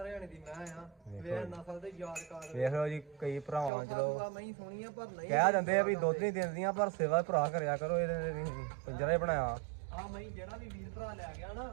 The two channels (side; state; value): left; drops out; at 3.7 s